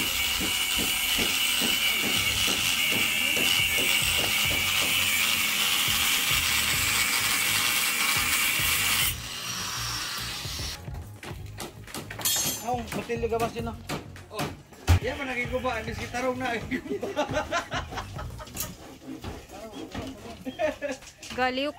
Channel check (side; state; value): both; identical; correlation 1.00